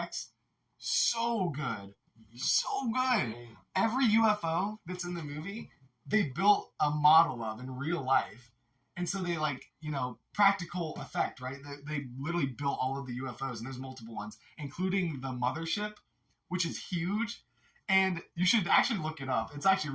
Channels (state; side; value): identical; both; correlation 1.00